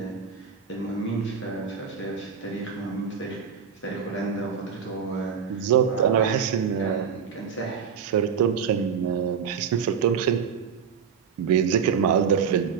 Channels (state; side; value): quieter; left; 7.0 dB